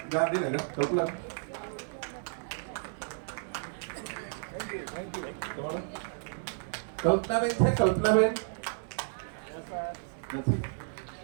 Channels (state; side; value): silent; left; digital silence